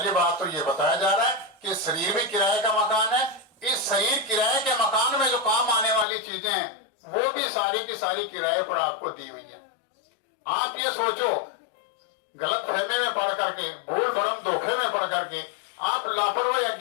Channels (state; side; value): drops out; right; at 6.1 s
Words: बात तो ये बताया जा रहा है कि शरीर भी किराए का मकान है। इस शरीर किराए के मकान में जो काम आने वाली चीजें हैं वो भी सारी की सारी किराए पर आपको दी हुई है। आप ये सोचो, गलत फहमी में पढ़ करके, भूल भरम धोखे में पढ़ करके, आप लापरवाही